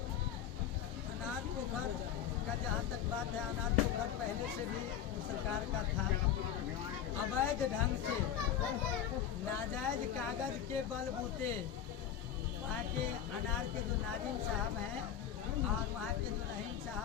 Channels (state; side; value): quieter; right; 9.5 dB